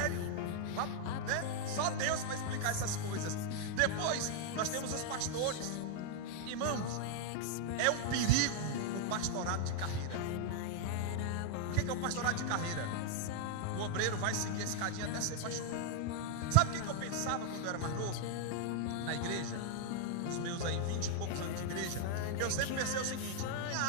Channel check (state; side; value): different; both; correlation 0.00